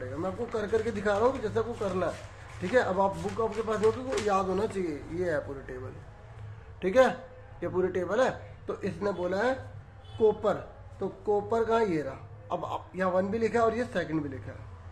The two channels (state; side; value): identical; both; correlation 1.00